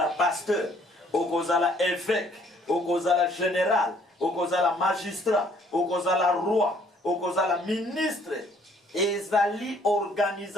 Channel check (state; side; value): normal; both; correlation 0.62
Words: pasteur, okozala évêque, okozala général, okozala magistrat, okozala roi, okozala ministre. Ezali